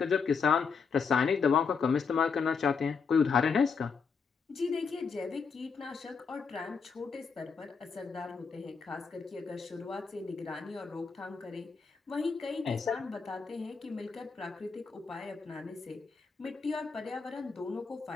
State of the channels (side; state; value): right; quieter; 5.5 dB